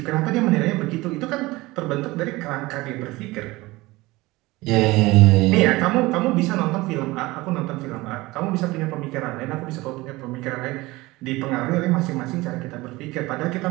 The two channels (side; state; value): left; quieter; 20.7 dB